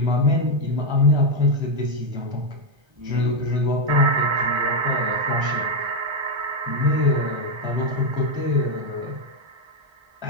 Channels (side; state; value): left; late; 1.3 ms